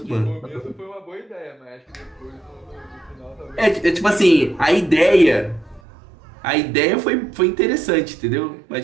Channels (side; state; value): left; drops out; at 5.8 s